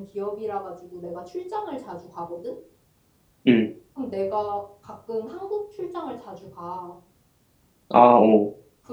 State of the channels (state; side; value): identical; both; correlation 1.00